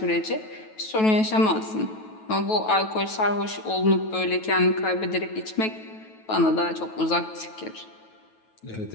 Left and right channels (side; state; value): right; late; 9.2 ms